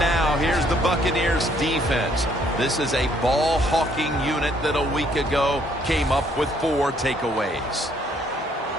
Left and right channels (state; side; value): normal; both; correlation 0.66